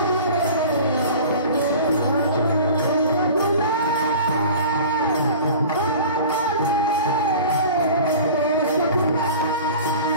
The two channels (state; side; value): inverted; both; correlation -0.40